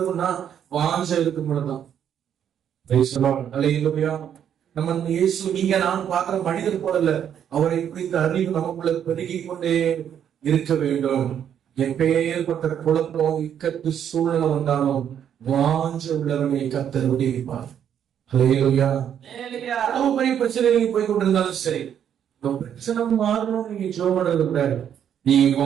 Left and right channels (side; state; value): left; quieter; 9.1 dB